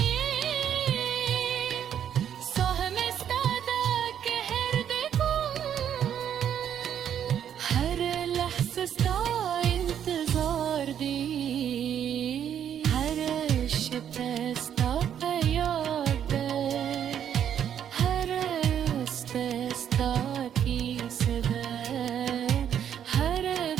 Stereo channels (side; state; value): left; quieter; 9.3 dB